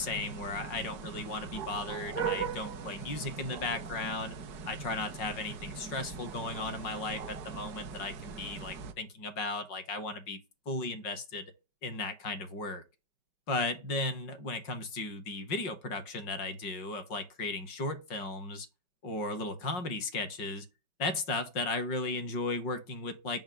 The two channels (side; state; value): right; late; 5.5 ms